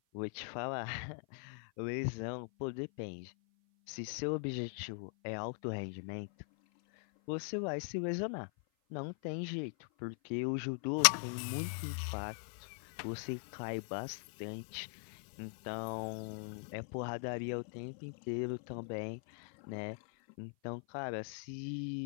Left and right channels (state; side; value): silent; right; 51 dB below the other